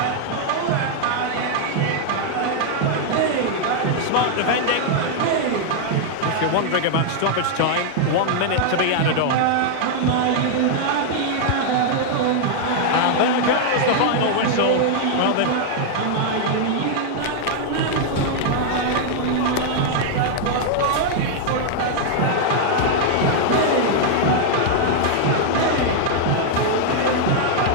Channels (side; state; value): both; different; correlation 0.00